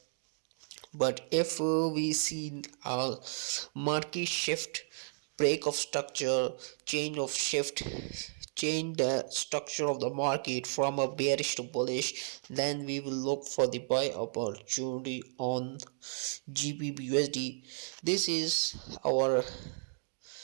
But if we see a market shift, break of structure, change of shift, change the structure of the market from a bearish to bullish, then we will look for the buy opportunity on GBPUSD. This is our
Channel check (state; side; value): silent; left; digital silence